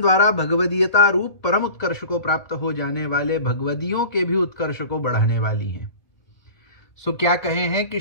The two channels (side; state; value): right; late; 2.1 ms